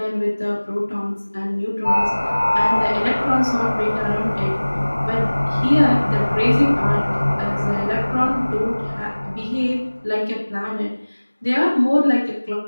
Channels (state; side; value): inverted; both; correlation -1.00